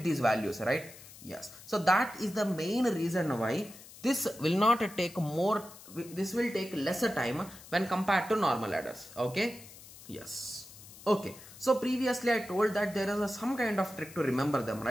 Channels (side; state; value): left; noise; hiss, 18 dB below the sound